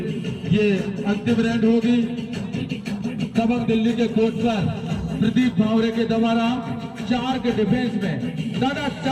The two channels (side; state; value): both; identical; correlation 1.00